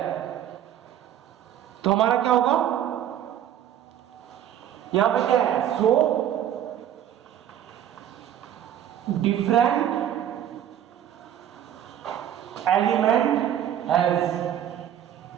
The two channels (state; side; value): quieter; left; 10.7 dB